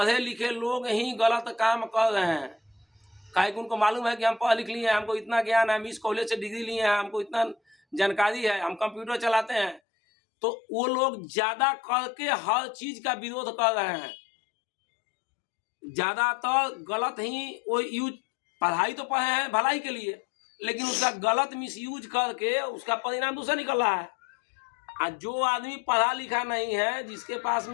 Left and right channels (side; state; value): right; drops out; at 9.8 s